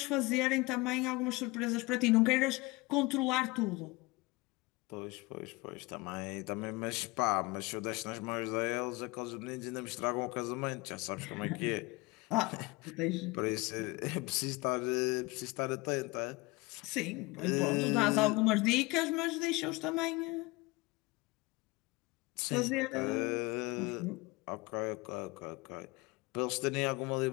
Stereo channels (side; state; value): right; quieter; 23.7 dB